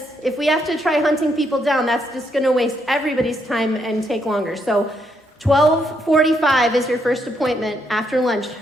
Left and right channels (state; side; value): normal; both; correlation 0.76